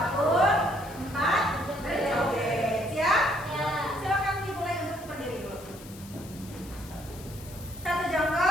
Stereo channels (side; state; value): left; noise; hiss, 19 dB below the sound